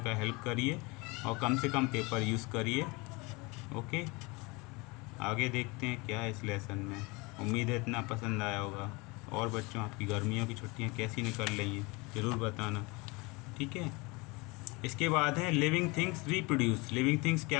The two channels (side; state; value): right; quieter; 26.1 dB